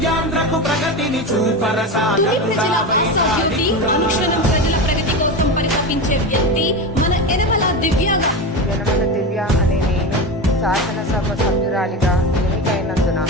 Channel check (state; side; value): normal; both; correlation 0.21